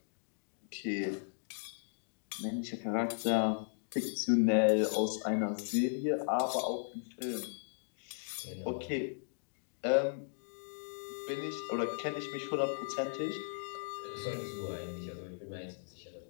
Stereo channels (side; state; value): right; silent; digital silence